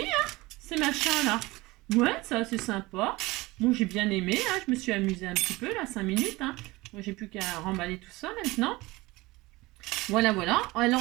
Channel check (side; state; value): left; quieter; 21.2 dB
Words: hein, ces machins-là. Ouais, ça c'est sympa. Bon, j'ai bien aimé, hein. Je me suis amusée un petit peu, là, 5 minutes, hein. Moi, j'ai plus qu'à remballer tout ça maintenant. Voilà, voilà.